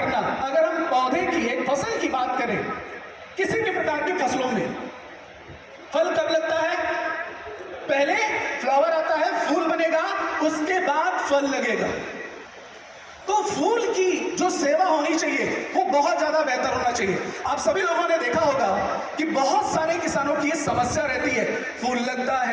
अगर हम पौधे की, एक फसल की बात करें, किसी भी प्रकार की फसलों में फल कब लगता है? पहले फ्लावर आता है, फूल बनेगा, उसके बाद फल लगेगा। तो फूल की जो सेवा होनी चाहिए वो बहुत ज्यादा बेहतर होना चाहिए। आप सभी लोगों ने देखा होगा कि बहुत सारे किसानों की ये समस्या रहती है, फूल लगता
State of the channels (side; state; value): both; identical; correlation 1.00